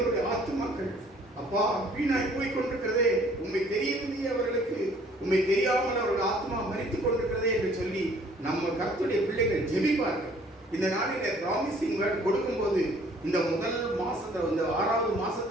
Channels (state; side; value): normal; both; correlation 0.57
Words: ஆத்துமாக்கள் அப்பா வீணாய் போய் கொண்டிருக்கிறதே, உண்மை தெரியவில்லையே அவர்களுக்கு, உண்மை தெரியாமல் அவர்கள் ஆத்மா மரித்துக் கொண்டிருக்கிறதே என்று சொல்லி நம்ம கர்த்தருடைய பிள்ளைகள் ஜெபிப்பார்கள். இந்த நாளில ப்ராமிசிங் வேர்ட் கொடுக்கும்போது இந்த முதல் மாசத்துல, இந்த 6வது